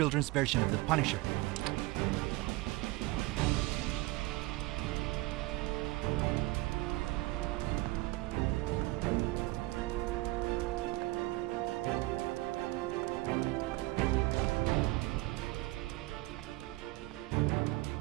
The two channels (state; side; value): quieter; left; 20.6 dB